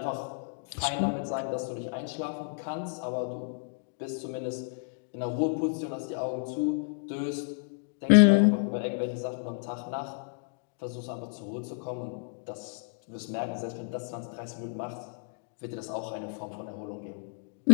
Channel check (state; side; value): silent; right; digital silence